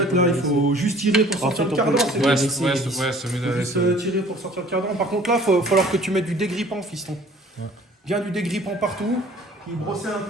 là, il faut juste tirer pour sortir le cardan. C'est Ouais, mieux. c'est mieux de Juste laisser. tirer pour sortir le cardan. Par contre, là, il va falloir que tu mettes du dégrippant, fiston. Ouais. Bien du dégrippant partout. Puis brosser un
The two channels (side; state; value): both; normal; correlation 0.51